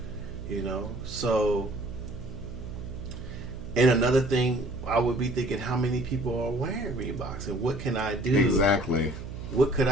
you know. So, and another thing, I would be thinking, how many people are wearing Reeboks, and what can I do? Exactly. What could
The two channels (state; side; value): noise; right; hum, 10 dB below the sound